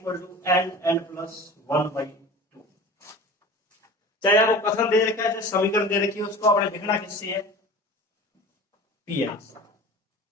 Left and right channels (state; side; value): normal; both; correlation 0.38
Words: n+1/2। चाहे आपको कथन दे रखा है चाहे समीकरण दे रखी है, उसको आपने लिखना किससे है, Pn।